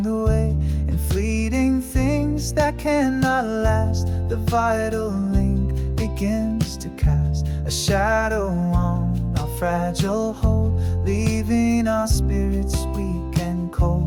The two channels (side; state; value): both; identical; correlation 1.00